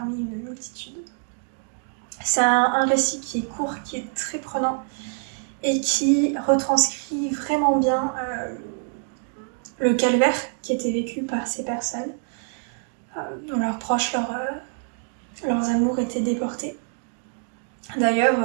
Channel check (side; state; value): left; silent; 57 dB below the other